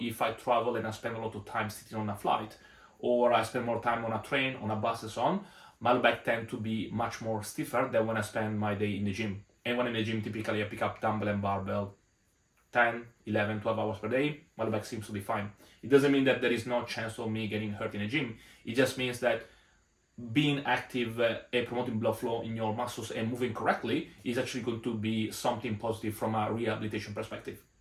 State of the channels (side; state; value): both; identical; correlation 1.00